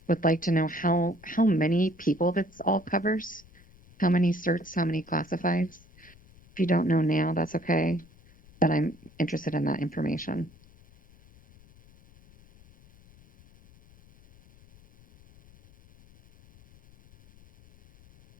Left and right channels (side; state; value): left; noise; rumble, 26 dB below the sound